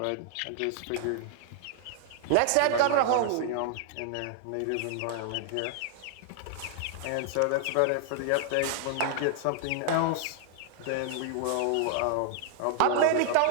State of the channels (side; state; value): both; different; correlation 0.00